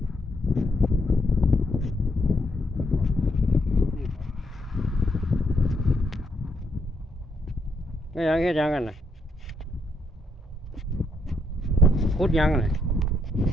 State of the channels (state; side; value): normal; both; correlation 0.76